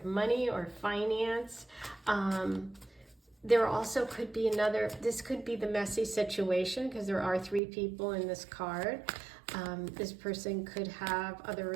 money or finance. There also could be this could be the messy situation, because there are 3 people in this card. This person could have other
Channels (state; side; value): drops out; left; at 7.6 s